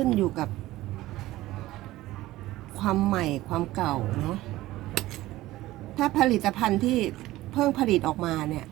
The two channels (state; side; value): quieter; left; 16.8 dB